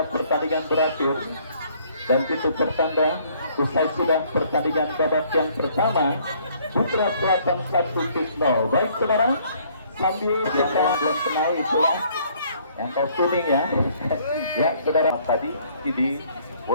pertandingan berakhir, dan itu pertanda usai sudah pertandingan babak yang pertama. Putra Selatan 1-0. Baik saudara, sambil kita belum kenal itulah yang kau kuning ya. Ya saudara, tadi ini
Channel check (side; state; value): both; inverted; correlation -0.62